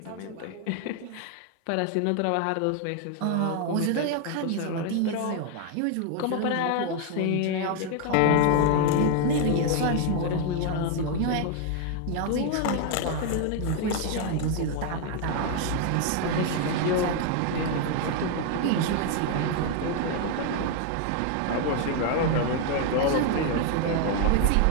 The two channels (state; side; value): different; both; correlation 0.00